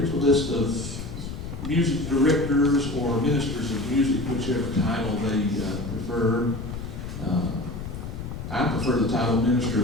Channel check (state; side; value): noise; left; rumble, 8 dB below the sound